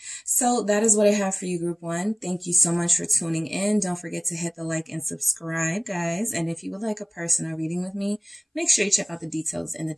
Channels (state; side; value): identical; both; correlation 1.00